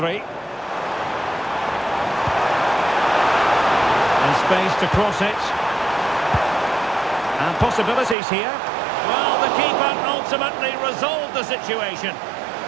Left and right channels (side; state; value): left; drops out; at 8.2 s